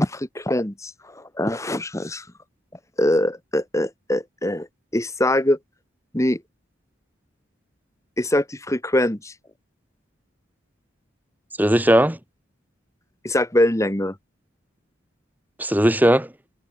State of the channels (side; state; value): both; normal; correlation 0.82